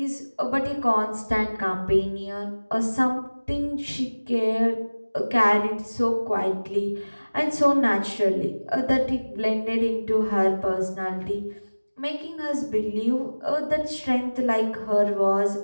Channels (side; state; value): both; inverted; correlation -1.00